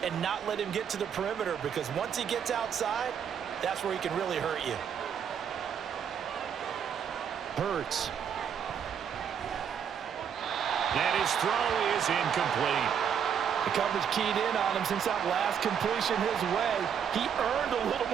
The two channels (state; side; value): quieter; left; 7.9 dB